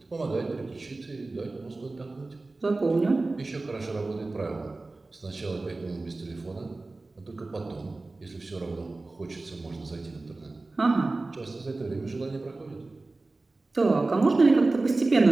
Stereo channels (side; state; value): left; quieter; 3.3 dB